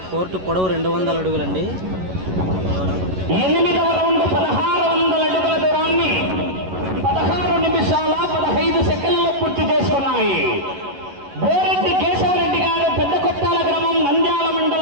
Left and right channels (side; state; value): left; late; 11 ms